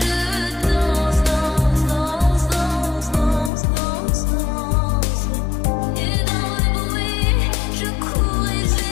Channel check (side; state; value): right; drops out; at 3.5 s